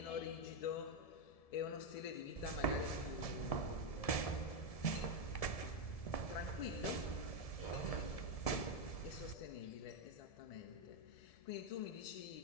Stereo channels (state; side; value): late; right; 1.7 ms